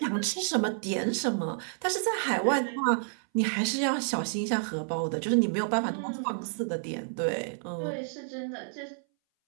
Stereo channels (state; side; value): silent; left; 58 dB below the other